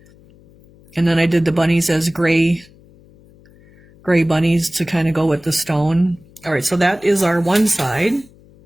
and then I did the bunnies as gray bunnies to kind of go with the stone. All right, so that is our one side.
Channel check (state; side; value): noise; left; hum, 27 dB below the sound